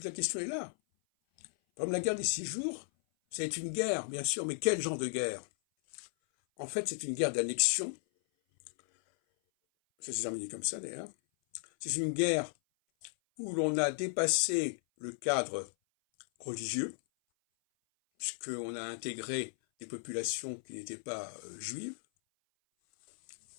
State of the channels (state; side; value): silent; right; 54 dB below the other